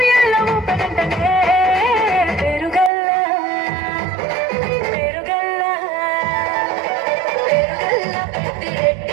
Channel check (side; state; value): left; drops out; at 2.9 s